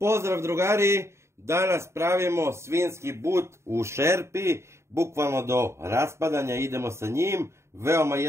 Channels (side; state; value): left; late; 0.13 ms